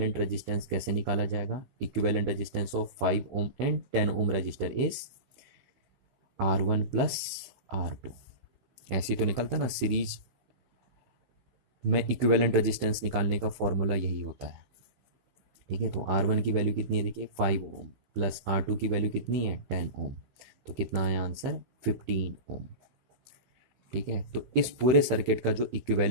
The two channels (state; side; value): late; left; 16 ms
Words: रेजिस्टेंस कैसे निकाला जाएगा? Equivalent resistance of 5 ohm and 10 ohm resistor is R1 plus R2। ऐसे तो निकलता ना, सीरीज में इक्विवेलेंट रेजिस्टेंस निकालने का फॉर्मूला यही होता है। ठीक है, तो R1 की वैल्यू कितनी है? देखिए 5 ओम प्लस R2 की वैल्यू कितनी है? 10 ओम। तो कितना आया आंसर? 15 ओम। ठीक है, तो इस पूरे सर्किट का जो